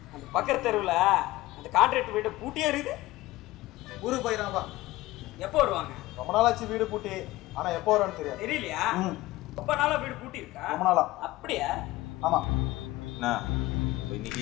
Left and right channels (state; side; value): quieter; right; 18.3 dB